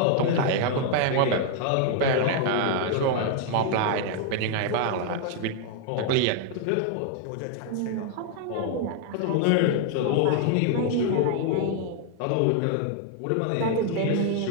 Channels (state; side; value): different; both; correlation 0.00